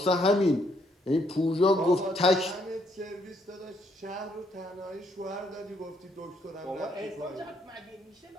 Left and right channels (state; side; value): normal; both; correlation 0.71